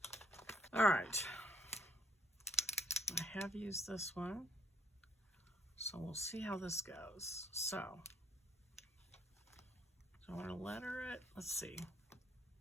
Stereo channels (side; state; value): both; normal; correlation 0.64